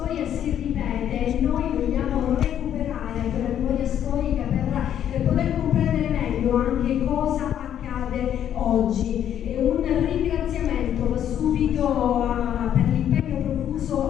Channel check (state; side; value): quieter; right; 10.1 dB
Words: si ripete e noi vogliamo recuperare quella memoria storica per poter comprendere meglio anche cosa accade oggi. Un ringraziamento va subito per l'impegno